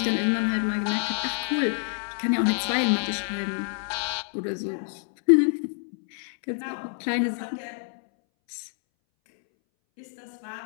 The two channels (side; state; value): right; silent; 60 dB below the other